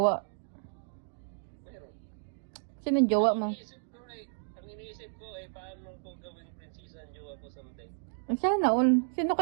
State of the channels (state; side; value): silent; left; digital silence